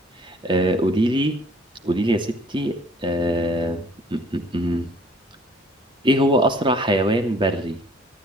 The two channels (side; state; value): both; normal; correlation 0.56